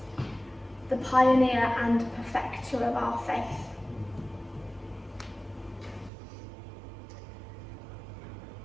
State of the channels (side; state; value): left; drops out; at 6.1 s